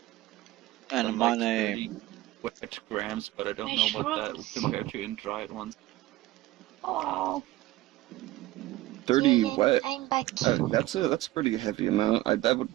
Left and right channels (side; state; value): left; quieter; 16.8 dB